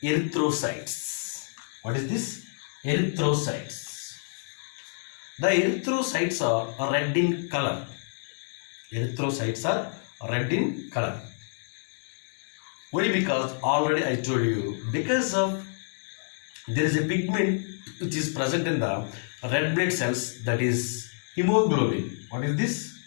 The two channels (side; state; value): right; silent; 59 dB below the other